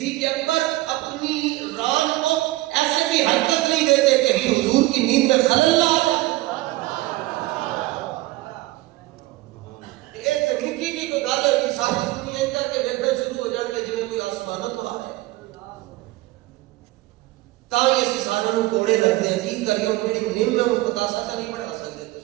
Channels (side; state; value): left; quieter; 18.7 dB